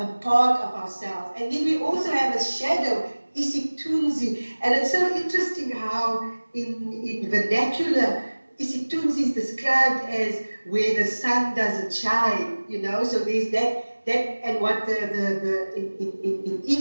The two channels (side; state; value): both; inverted; correlation -1.00